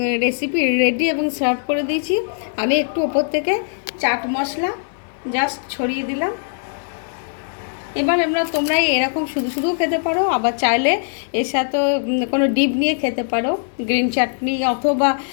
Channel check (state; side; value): silent; right; digital silence